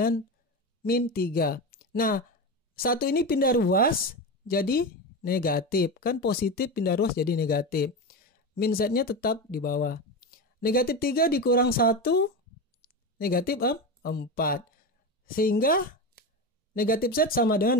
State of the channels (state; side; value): normal; both; correlation 0.20